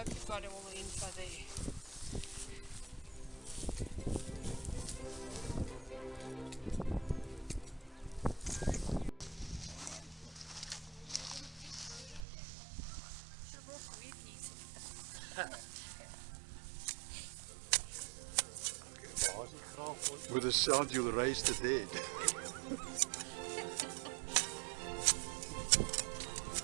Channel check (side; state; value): left; drops out; at 12.2 s